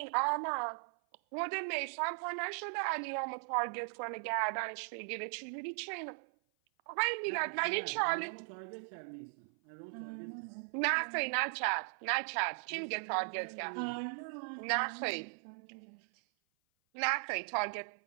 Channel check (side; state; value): left; silent; 53 dB below the other